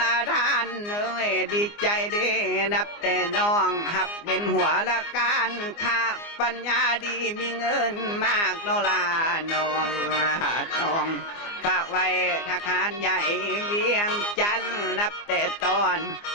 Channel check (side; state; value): right; late; 24 ms